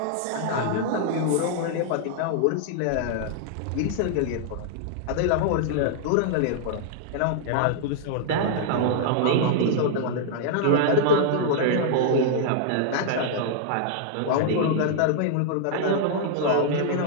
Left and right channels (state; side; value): different; both; correlation -0.01